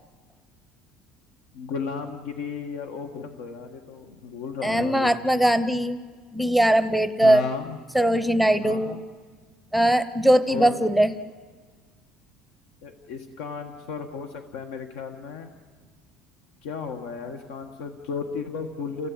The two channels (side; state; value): both; normal; correlation 0.87